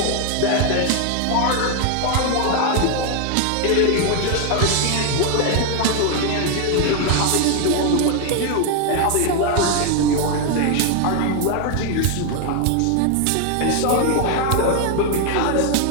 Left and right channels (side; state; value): both; different; correlation 0.01